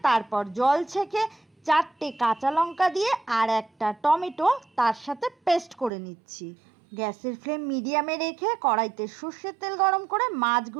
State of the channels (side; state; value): left; drops out; at 5.9 s